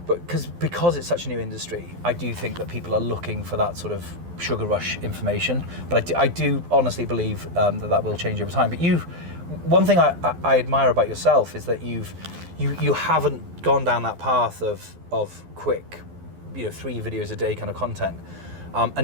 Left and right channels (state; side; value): late; left; 12 ms